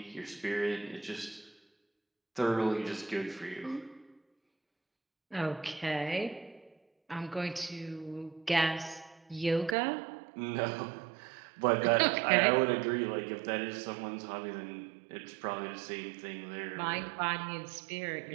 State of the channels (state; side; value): drops out; left; at 9.8 s